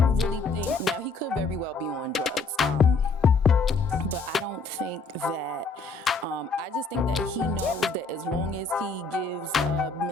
really think, now he could very well be on drugs, but I don't think that, I just think that he knows that as long as he gives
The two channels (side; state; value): right; quieter; 3.9 dB